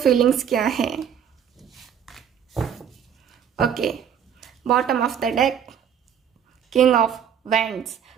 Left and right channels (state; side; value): quieter; left; 8.5 dB